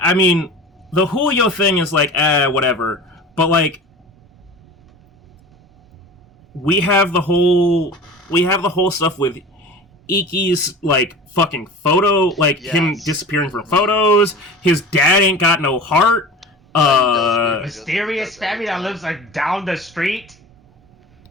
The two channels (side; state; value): both; normal; correlation 0.37